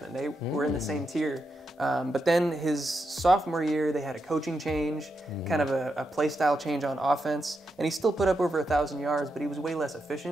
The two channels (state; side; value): normal; both; correlation 0.85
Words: They were in the same tier. But then his sophomore year, they had a coaching change, kind of a play style change on offense, and he still put up over 1,000 yards, but he was way less